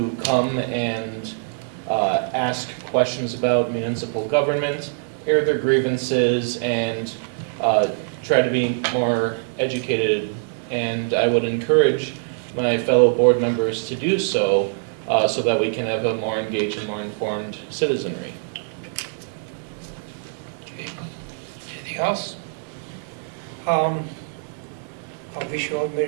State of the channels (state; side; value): silent; left; 63 dB below the other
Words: come and ask questions about municipal government, air their grievances, and try to be more educated. And I would encourage my fellow board members to do so, so that we can have a more engaged and more informed citizenry. Okay. Anything else? I wish you all